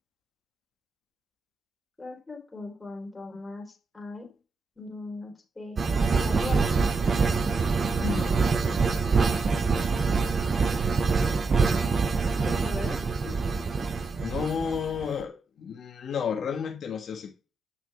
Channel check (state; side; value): quieter; left; 3.3 dB